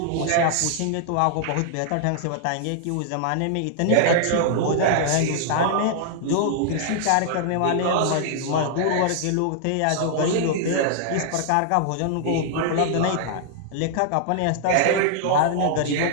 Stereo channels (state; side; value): different; both; correlation -0.01